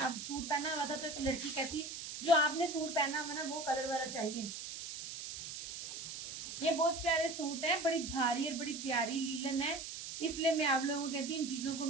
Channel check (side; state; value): right; noise; hiss, 8 dB below the sound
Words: सूट पहना हुआ था, तो एक लड़की कहती जो आपने सूट पहना हुआ ना वो कलर वाला चाहिए। ये बहुत प्यारे सूट है, बड़ी भारी और बड़ी प्यारी लीलन है, इसलिए मैं आप लोगों को कहती हूँ इन चीजों को